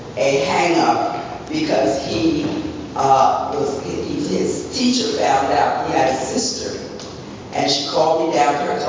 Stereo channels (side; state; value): both; identical; correlation 1.00